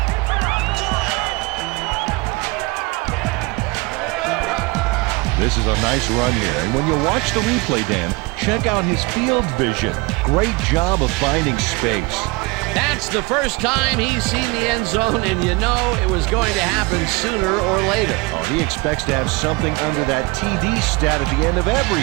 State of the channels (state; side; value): quieter; left; 24.8 dB